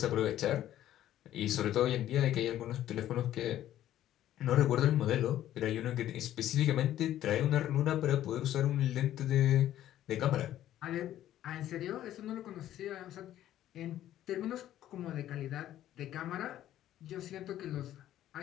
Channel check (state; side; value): quieter; right; 12.5 dB